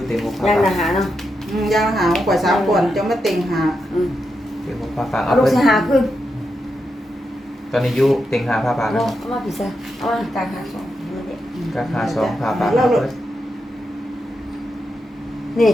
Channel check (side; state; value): both; normal; correlation 0.86